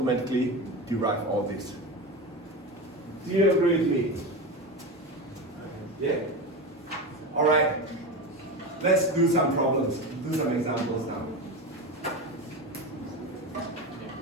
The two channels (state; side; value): normal; both; correlation 0.22